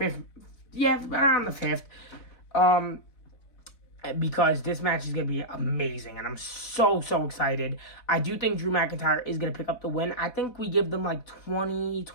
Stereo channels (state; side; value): late; right; 3.9 ms